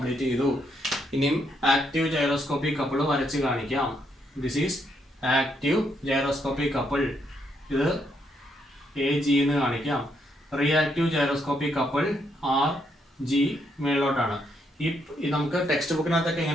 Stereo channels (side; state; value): both; normal; correlation 0.76